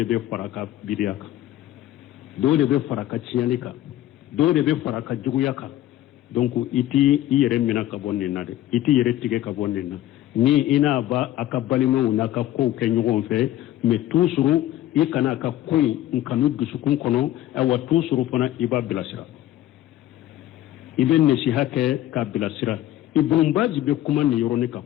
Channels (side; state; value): right; quieter; 13.7 dB